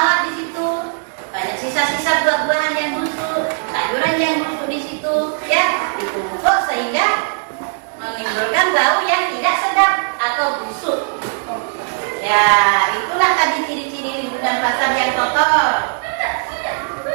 di situ, banyak sisa-sisa buah-buahan yang busuk, sayuran yang busuk di situ, ya, ditumpuk sehingga menimbulkan bau yang tidak sedap atau busuk. Ya, itulah tadi ciri-ciri lingkungan pasar yang kotor.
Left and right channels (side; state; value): left; silent; digital silence